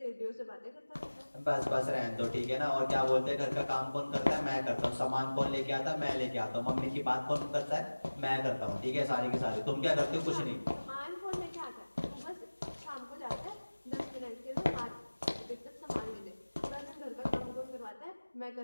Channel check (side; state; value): both; inverted; correlation -1.00